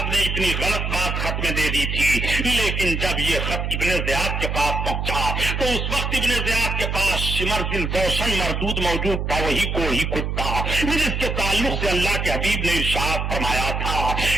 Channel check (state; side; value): noise; right; hum, 2 dB below the sound